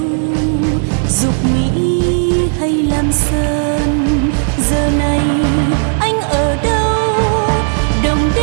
dục Mỹ hay Lam Sơn? Giờ này anh ở đâu, đồng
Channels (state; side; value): silent; left; digital silence